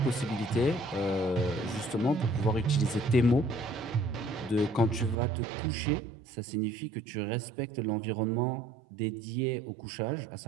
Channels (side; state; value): left; drops out; at 5.2 s